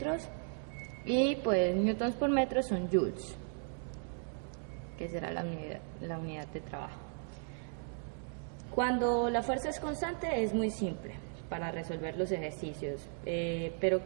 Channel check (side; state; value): left; silent; 54 dB below the other